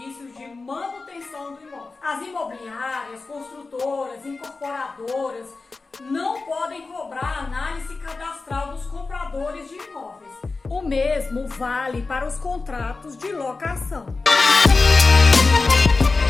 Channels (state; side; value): quieter; right; 3.9 dB